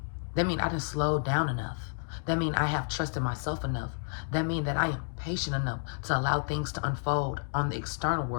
That means I didn't slow down enough. That means I have trusted myself enough. That means that I am patient enough to allow things to unfold on the external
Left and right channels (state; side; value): silent; right; digital silence